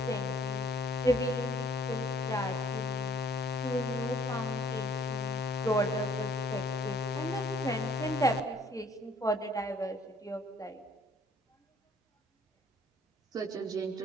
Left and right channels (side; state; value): both; normal; correlation 0.60